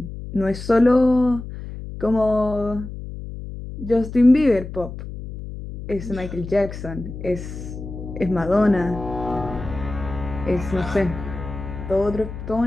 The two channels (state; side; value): noise; left; hum, 10 dB below the sound